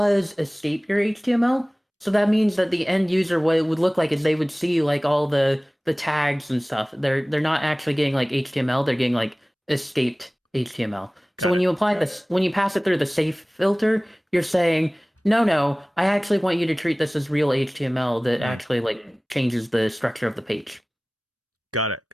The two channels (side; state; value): both; normal; correlation 0.98